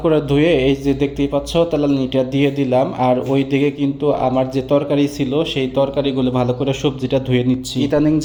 করে ধুয়ে এই যে দেখতেই পাচ্ছ তেলানিটা দিয়ে দিলাম। আর ওই দিকে কিন্তু আমার যে তরকারি ছিল সেই তরকারিগুলো ভালো করে সবজিটা ধুয়ে নিচ্ছি। ইদানিং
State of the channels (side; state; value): both; identical; correlation 1.00